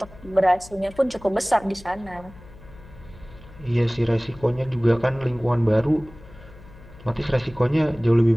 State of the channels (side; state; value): left; noise; hum, 20 dB below the sound